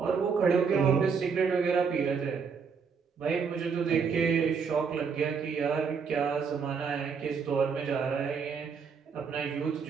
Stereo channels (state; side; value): quieter; left; 5.9 dB